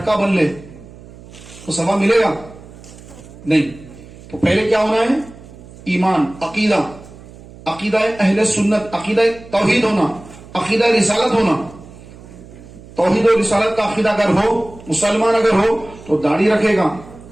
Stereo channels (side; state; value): right; noise; hum, 19 dB below the sound